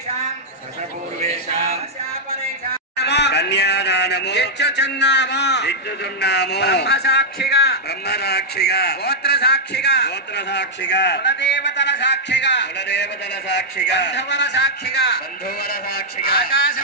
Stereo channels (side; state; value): both; normal; correlation -0.07